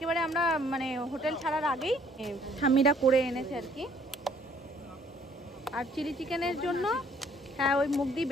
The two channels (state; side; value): normal; both; correlation 0.61